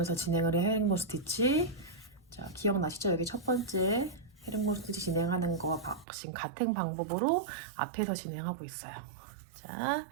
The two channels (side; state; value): left; drops out; at 6.1 s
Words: 진행을 해 헤링본 스티치. 자, 기억나시죠? 여기 첫 번째 헤링본 스티치 진행하는 거와 지금 같은 방법으로 앞에서 진행하고 있어요. 자,